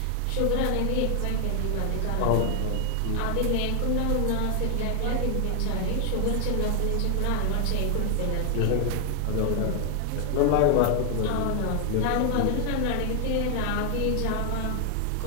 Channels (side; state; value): both; different; correlation 0.00